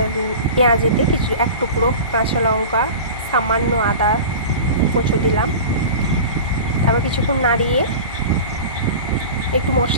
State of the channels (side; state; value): both; inverted; correlation -0.34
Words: পেঁয়াজেতে এক টুকরো কাঁচা লঙ্কা, সামান্য আদা কুচো দিলাম। তারপর কিছুক্ষণ নাড়িয়ে একটু